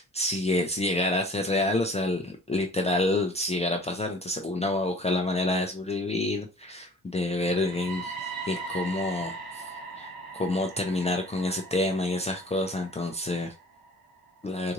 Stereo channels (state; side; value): normal; both; correlation 0.49